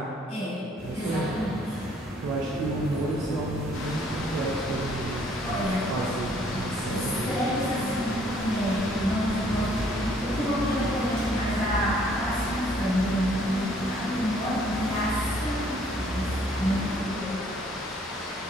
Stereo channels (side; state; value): both; normal; correlation 0.63